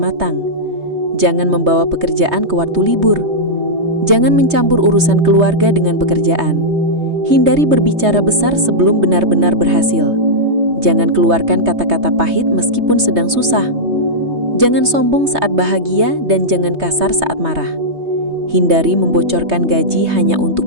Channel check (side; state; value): left; late; 3.2 ms